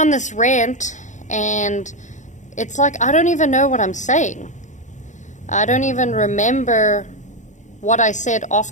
this rant, and it's like I don't even know what I'm saying. I don't even remember what I said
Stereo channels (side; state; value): right; late; 0.35 ms